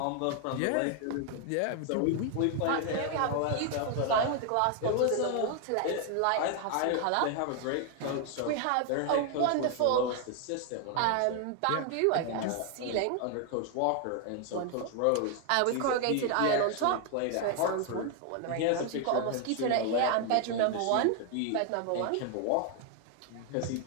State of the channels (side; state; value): both; different; correlation 0.00